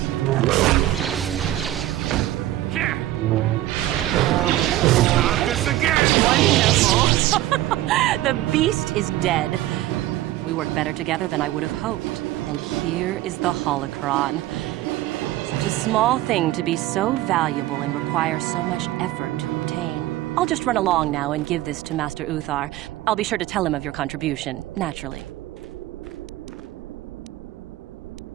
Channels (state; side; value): quieter; left; 15.2 dB